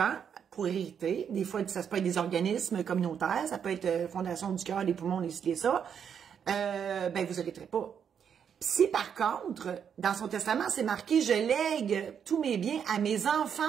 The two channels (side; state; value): left; quieter; 7.8 dB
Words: pour hériter, des fois, ça peut être des organismes communautaires, ça peut être Fondation du cœur, des poumons, des ça, ben, vous hériterez pas. Si, par contre, dans son testament, c'est marqué « Je lègue tous mes biens à mes